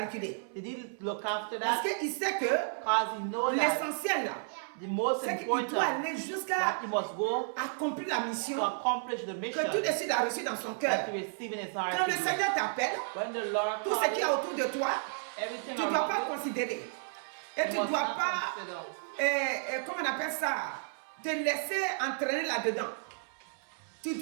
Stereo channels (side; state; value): left; silent; 56 dB below the other